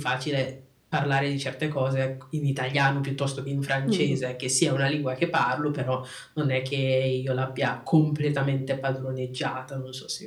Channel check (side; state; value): both; identical; correlation 1.00